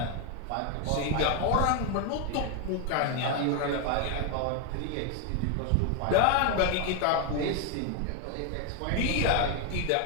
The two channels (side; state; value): both; different; correlation 0.01